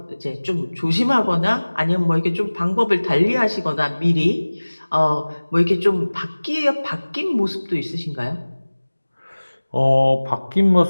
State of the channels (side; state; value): both; inverted; correlation -1.00